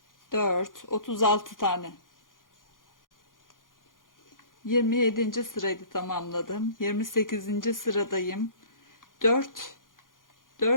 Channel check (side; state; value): right; late; 0.90 ms